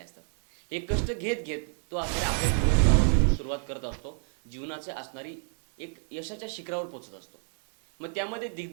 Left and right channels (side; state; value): left; silent; 58 dB below the other